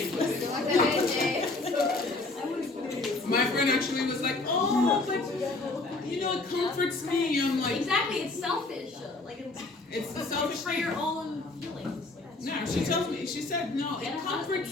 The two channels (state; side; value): quieter; right; 3.3 dB